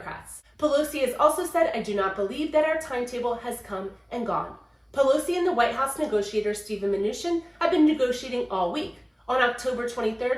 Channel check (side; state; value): both; identical; correlation 1.00